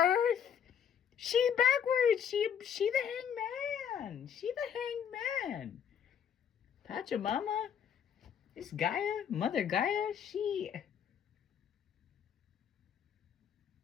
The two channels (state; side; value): quieter; right; 8.3 dB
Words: She backwards. She the hangman. She the hangman. Pachamama. This Gaia, Mother Gaia,